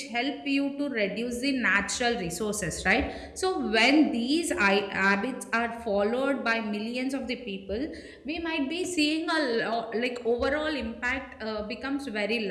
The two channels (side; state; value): both; identical; correlation 1.00